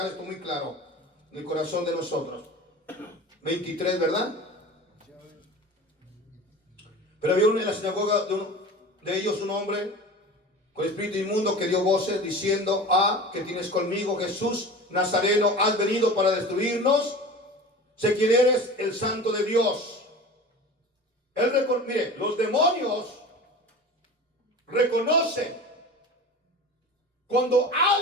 esto muy claro en el corazón de nosotros. 23, ¿verdad? Pero había en la sinagoga de ellos un hombre con espíritu inmundo que dio voces diciendo: ¿qué tienes conmigo, Jesús Nazareno? ¿Has venido para destruirnos? Sé quién eres, el Santo de Dios. Mire, los demonios reconocen cuando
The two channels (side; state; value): both; normal; correlation 0.35